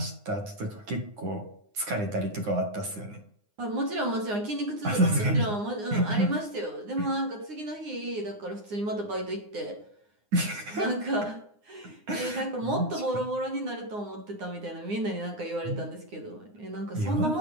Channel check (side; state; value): left; late; 9.7 ms